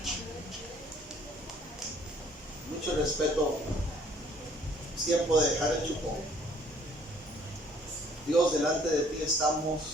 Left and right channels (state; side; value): normal; both; correlation 0.60